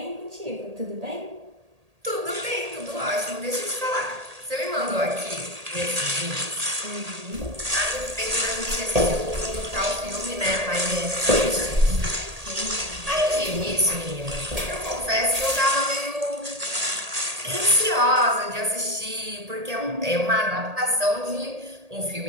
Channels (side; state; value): left; late; 1.8 ms